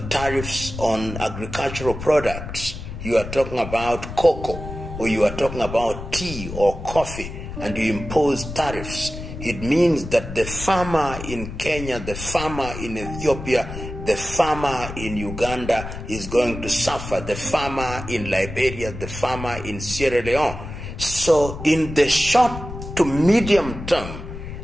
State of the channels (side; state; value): left; noise; rumble, 9 dB below the sound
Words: tariffs on agricultural products, you are talking about cocoa, or you are talking about tea or coffee, and you impose tariffs, it means that the farmer in Kenya, the farmer in Ethiopia, the farmer in Uganda is going to suffer, the farmer in Liberia, the farmer in Sierra Leone. So in the short to medium term,